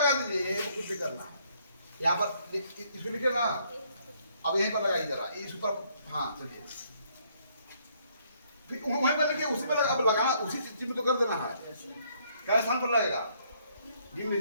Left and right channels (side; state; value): both; inverted; correlation -0.68